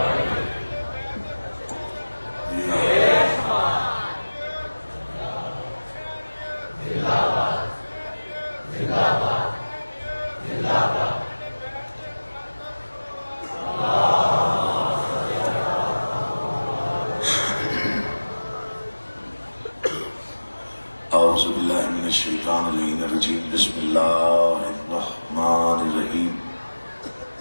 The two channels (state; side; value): inverted; both; correlation -1.00